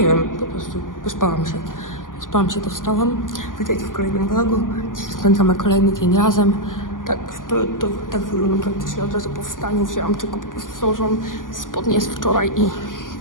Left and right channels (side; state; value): right; late; 0.89 ms